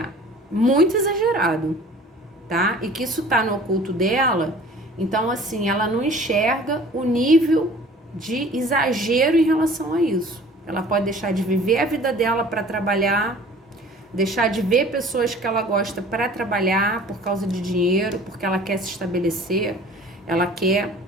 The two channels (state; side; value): normal; both; correlation 0.47